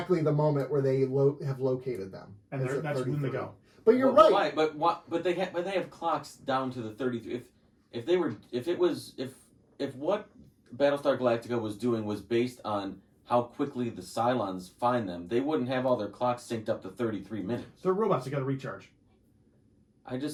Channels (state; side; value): identical; both; correlation 1.00